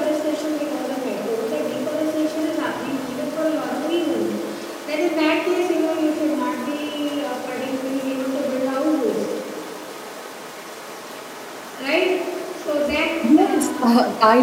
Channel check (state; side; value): identical; both; correlation 1.00